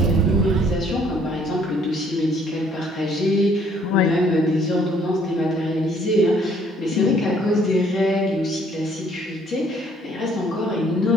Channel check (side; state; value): both; normal; correlation 0.62